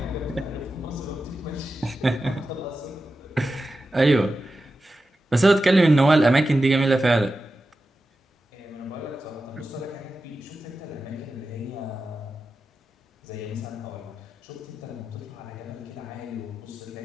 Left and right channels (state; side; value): normal; both; correlation 0.92